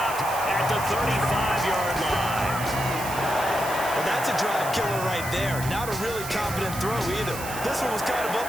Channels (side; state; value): right; noise; hiss, 10 dB below the sound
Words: at the 35-yard line. Well, that's a drive killer right there. Not a really confident throw either. This one was kind of